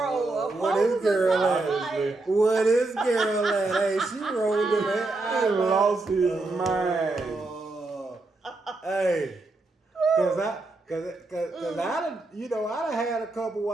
What is girl at? Like, What is girl at? Hey, she rolled in that. He lost his mind. Hey, cause I done, you know, I done had a couple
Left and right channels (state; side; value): quieter; left; 3.2 dB